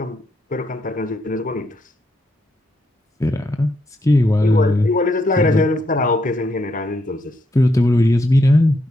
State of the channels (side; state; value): both; normal; correlation 0.78